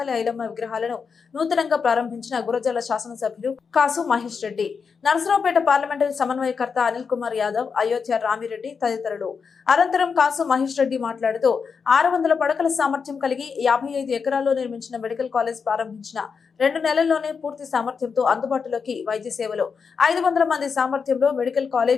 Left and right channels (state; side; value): quieter; right; 5.7 dB